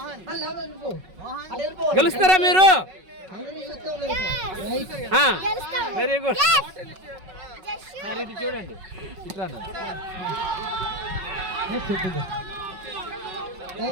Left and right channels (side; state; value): left; late; 5.4 ms